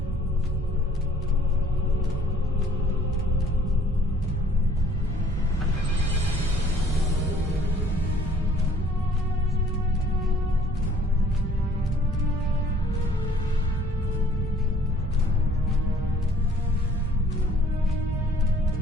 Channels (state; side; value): normal; both; correlation 0.58